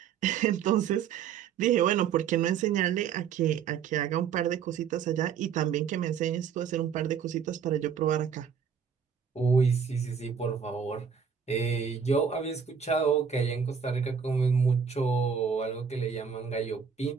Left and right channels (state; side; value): quieter; left; 7.1 dB